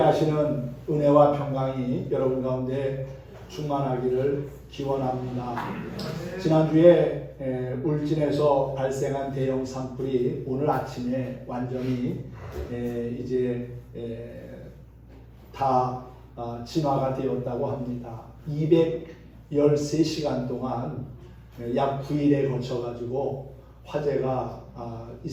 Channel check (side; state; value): both; identical; correlation 1.00